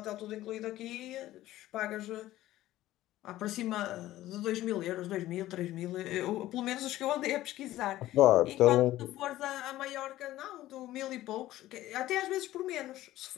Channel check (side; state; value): right; quieter; 15.2 dB